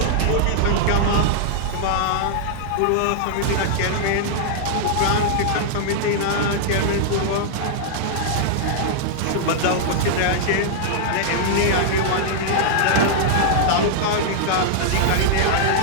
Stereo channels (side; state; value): both; different; correlation -0.01